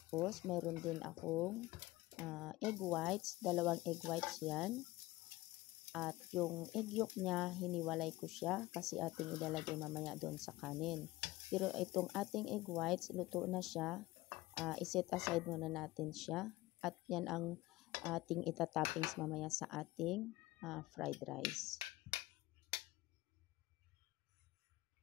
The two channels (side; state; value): right; quieter; 18.8 dB